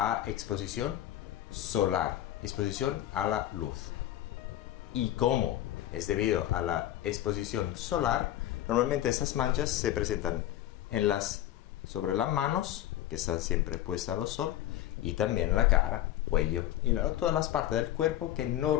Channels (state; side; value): quieter; right; 13.1 dB